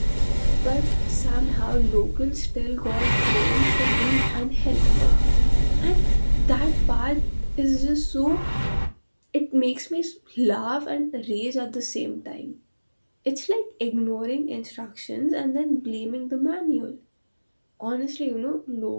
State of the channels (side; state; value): both; inverted; correlation -1.00